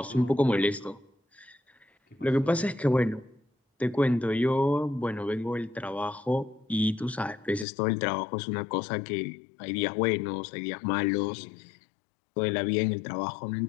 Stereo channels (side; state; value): right; drops out; at 7.7 s